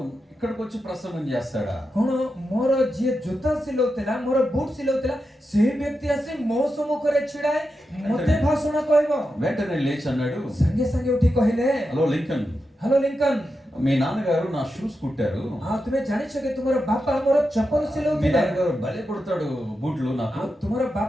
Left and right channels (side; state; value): both; normal; correlation 0.88